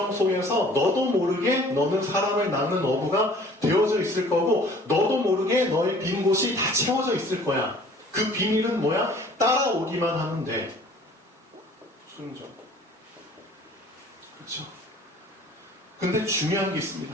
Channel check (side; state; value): both; normal; correlation 0.51